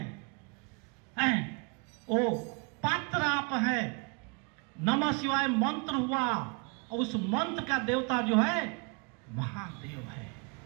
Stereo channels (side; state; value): left; quieter; 34.3 dB